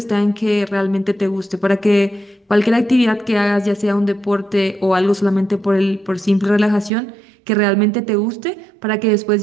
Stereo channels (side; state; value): left; drops out; at 6.9 s